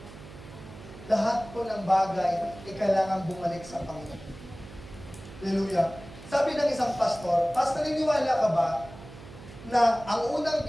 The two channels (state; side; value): noise; right; hum, 16 dB below the sound